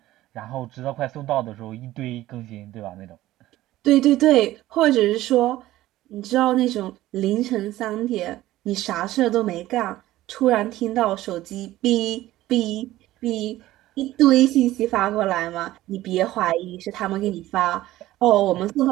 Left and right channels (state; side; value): quieter; left; 15.7 dB